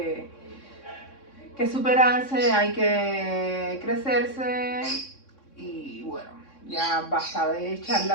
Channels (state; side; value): late; right; 3.6 ms